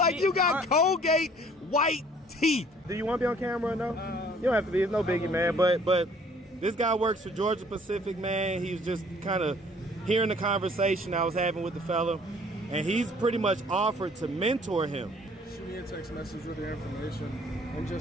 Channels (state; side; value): normal; both; correlation 0.56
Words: You got Colgate white teeth. Do you want to be on camera or no? You don't have to be. It's no biggie, man. But this guy works for Georgia Pacific, man. He was just kind of hearing the conversation I was having with the fella, and he's pretty much offered to mentor him. Shoot me a text message with your information. And